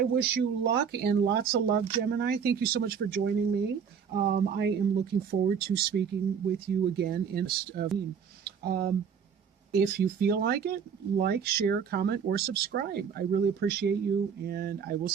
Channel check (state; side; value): quieter; left; 7.0 dB